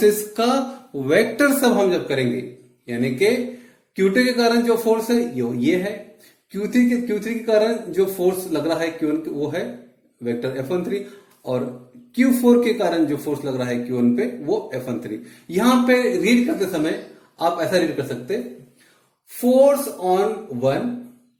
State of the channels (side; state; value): both; identical; correlation 1.00